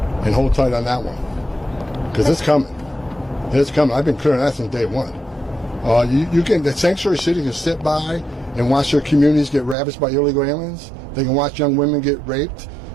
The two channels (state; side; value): drops out; left; at 9.8 s